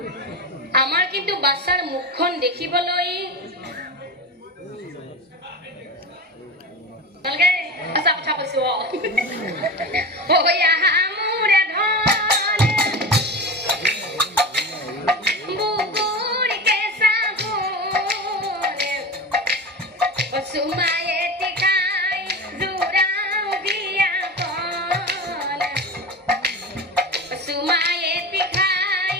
আমাৰ কিন্তু বাচ্চাৰ মুখখন দেখিবলৈ ভালকে আছা কথা কৈছো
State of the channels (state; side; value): normal; both; correlation 0.26